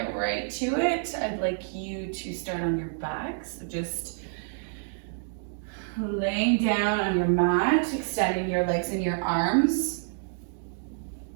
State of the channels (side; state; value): left; silent; digital silence